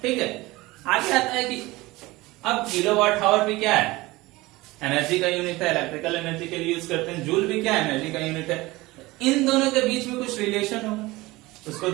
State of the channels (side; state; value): left; quieter; 20.4 dB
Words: ठीक है, आगे आता है कि अब किलोवाट आवर भी क्या है, एनर्जी का यूनिट है, इलेक्ट्रिकल एनर्जी के लिए यूज करते हैं। जूल भी क्या है, एनर्जी का यूनिट है। इन दोनों के बीच में कुछ रिलेशन होगा, उसको